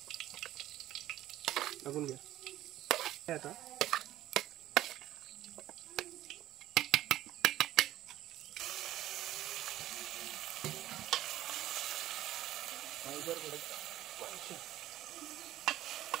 टाकून घ्या आता.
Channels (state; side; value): quieter; left; 13.9 dB